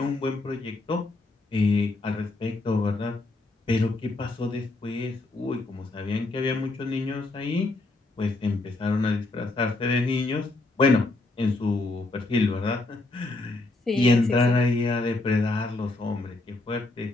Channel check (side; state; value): right; quieter; 3.0 dB